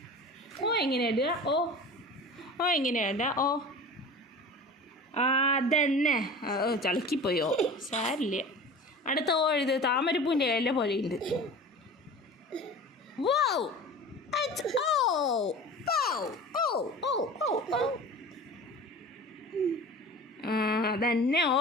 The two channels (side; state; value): both; normal; correlation 0.37